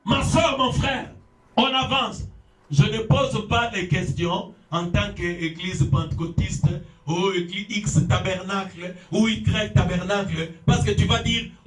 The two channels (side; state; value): both; identical; correlation 1.00